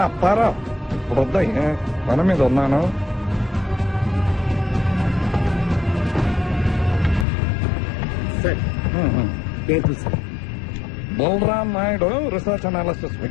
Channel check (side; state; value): right; drops out; at 7.2 s